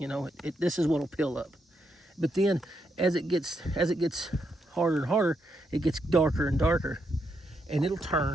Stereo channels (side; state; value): both; normal; correlation 0.80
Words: is what'll peel up, But then as it gets harder and harder, it gets darker and darker, and it'll